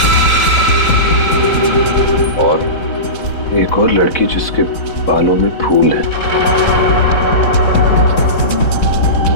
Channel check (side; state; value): right; late; 4.0 ms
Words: और एक और लड़की जिसके बालों में फूल है।